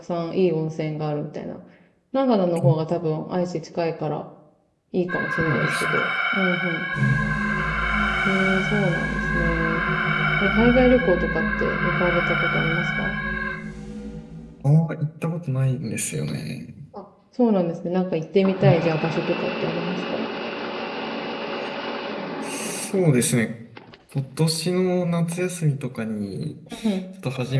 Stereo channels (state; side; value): identical; both; correlation 1.00